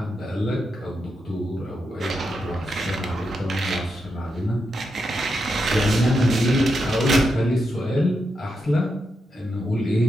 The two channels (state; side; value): normal; both; correlation 0.85